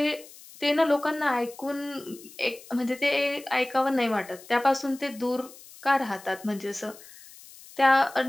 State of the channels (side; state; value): left; noise; hiss, 20 dB below the sound